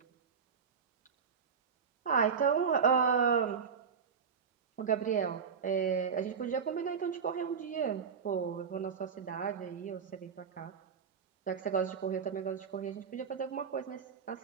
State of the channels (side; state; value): left; quieter; 6.4 dB